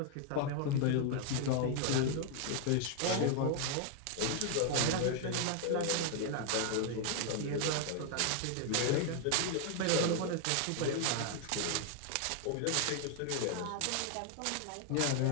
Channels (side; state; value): both; different; correlation 0.00